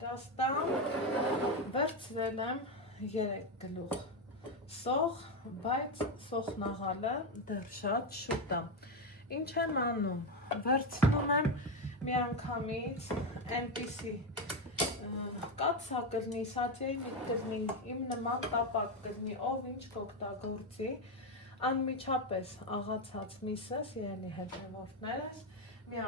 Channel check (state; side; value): normal; both; correlation 0.10